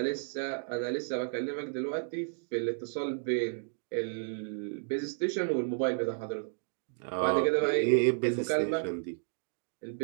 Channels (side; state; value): left; silent; digital silence